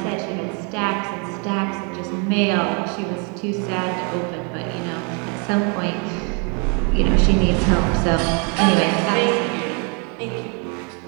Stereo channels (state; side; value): quieter; left; 35.7 dB